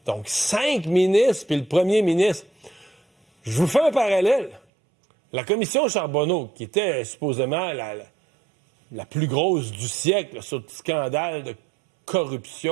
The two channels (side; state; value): left; drops out; at 4.6 s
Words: Donc, 5 ministres, puis le premier ministre. Je vous fais un parallèle. La commission Charbonneau, qui était supposément la plus grosse du siècle, là, sur le scandale de